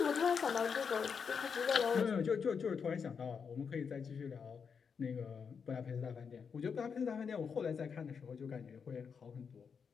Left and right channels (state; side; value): quieter; right; 6.2 dB